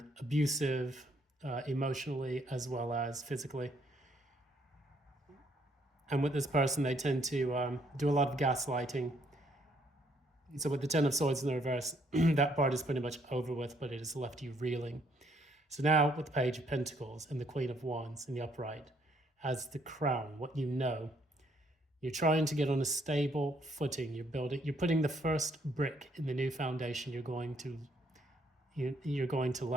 abusive, emotionally as well as physically. And with this person, they tend to do a lot of gaslighting. So with the Ten of Swords in the reverse, that part is pretty much over with, but it has left you reeling. So now with the Page of Pentacles and the Queen of Wands in the upright, as the crown, what you know, you're trying to get on a stable footing. You're putting the first brick in the new foundation you're going to, you're going to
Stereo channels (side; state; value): both; normal; correlation 0.69